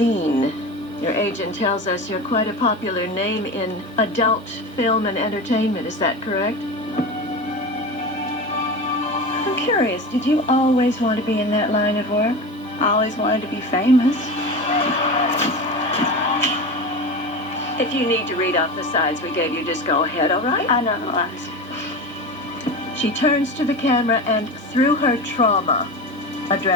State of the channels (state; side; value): normal; both; correlation 0.27